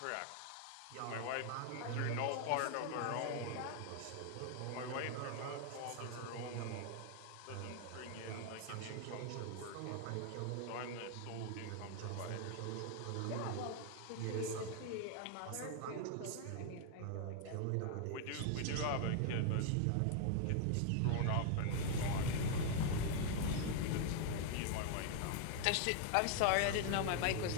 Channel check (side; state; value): both; different; correlation 0.00